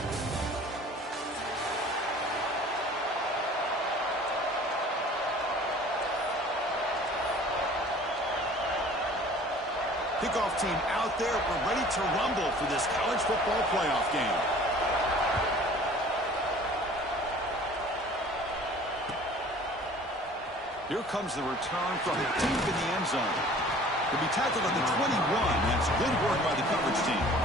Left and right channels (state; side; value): normal; both; correlation 0.48